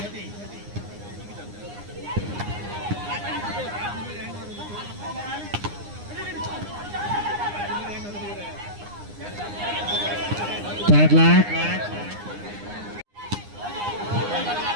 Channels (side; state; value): left; late; 9.8 ms